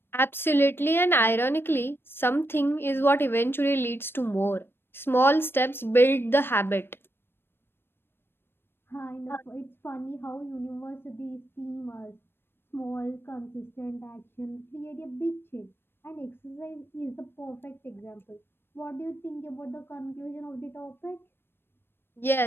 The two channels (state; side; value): late; right; 0.11 ms